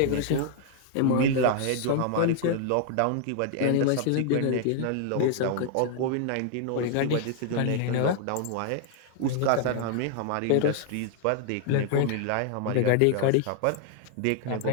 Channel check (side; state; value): both; different; correlation 0.00